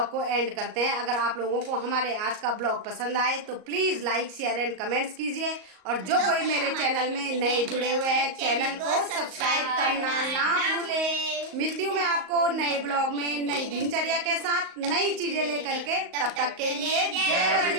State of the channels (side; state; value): left; late; 38 ms